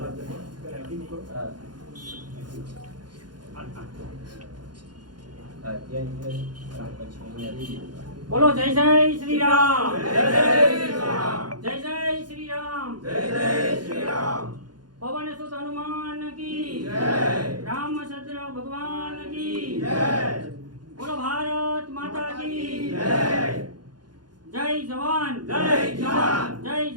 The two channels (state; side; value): late; left; 0.70 ms